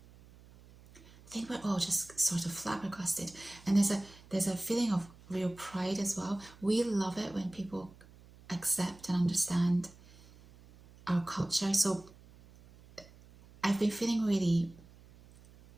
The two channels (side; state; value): right; noise; hum, 23 dB below the sound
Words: I think we're all just sort of flabbergasted, and there's a feeling of real pride as well. We love it when people accept and understand our culture. So I've been feeling really